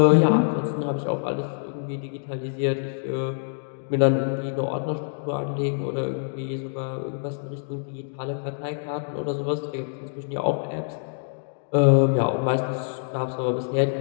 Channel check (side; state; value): right; silent; digital silence